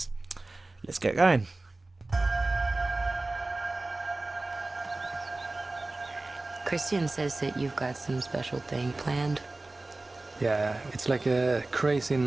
Let's get going. Christian says that you've got some special thing planned. Yeah, it's like a crazy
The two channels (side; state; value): left; quieter; 3.0 dB